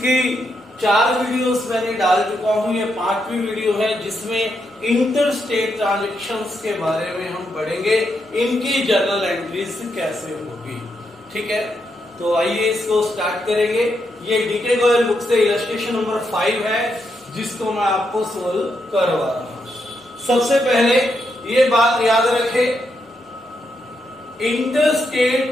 4 वीडियोस मैंने डाल चुका हूं, ये 5वीं वीडियो है जिसमें इंटर स्टेट ट्रांजेक्शंस के बारे में हम पढ़ेंगे, इनकी जर्नल एंट्रीज कैसे होगी। ठीक है, तो आइए इसको स्टार्ट करेंगे। ये डीके गोयल बुक से इलस्ट्रेशन नंबर 5 है जिसको मैं आपको सोल्व करवा रहा हूं। सबसे पहले ये बात याद रखें, इंटर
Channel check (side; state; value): both; normal; correlation 0.81